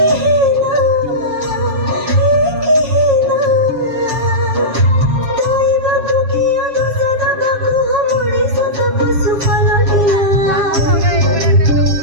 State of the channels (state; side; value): late; left; 7.3 ms